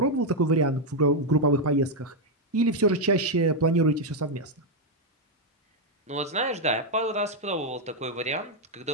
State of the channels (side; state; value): both; normal; correlation 0.01